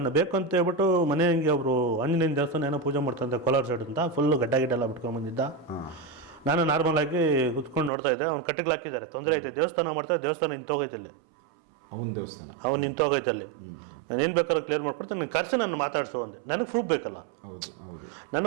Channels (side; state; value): left; drops out; at 7.9 s